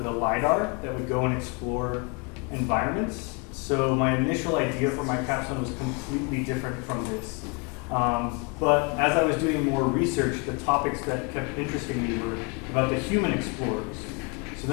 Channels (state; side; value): quieter; right; 32.3 dB